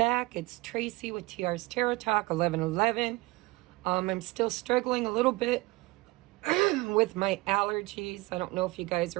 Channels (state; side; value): quieter; left; 21.9 dB